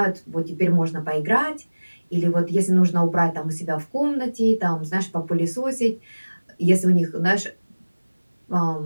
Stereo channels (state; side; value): inverted; both; correlation -1.00